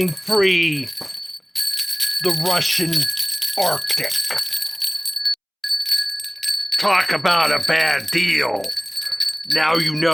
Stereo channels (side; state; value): both; identical; correlation 1.00